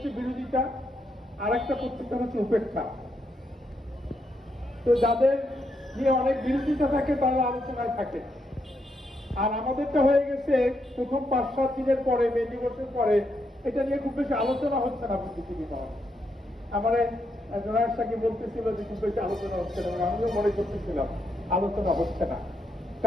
বিরোধিতা, আর একটা প্রত্যাখ্যান হচ্ছে উপেক্ষা। তো যাদের নিয়ে অনেক বিরোধিতা থাকে তারা আলোচনায় থাকে, আর আমাদেরটা হয়ে গেছে প্রথম 5-7 দিনের পরে, মে দিবসের পরে এটা নিয়ে খুব বেশি আলোচনা হচ্ছে না বুদ্ধিজীবী মহলে। আমার জোনায়ের সাহেব বলতেছিল যে খুব বেশি আলোচনা হচ্ছে না, আমিও মনে করতেছিলাম আলোচনা হচ্ছে না।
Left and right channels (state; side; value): normal; both; correlation 0.80